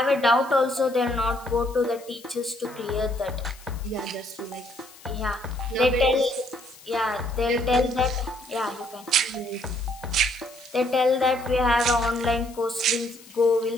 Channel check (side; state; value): left; noise; hiss, 22 dB below the sound